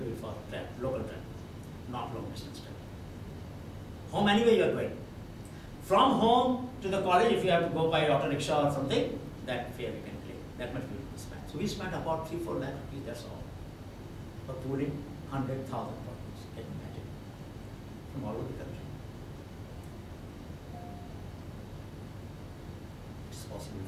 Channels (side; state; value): both; identical; correlation 1.00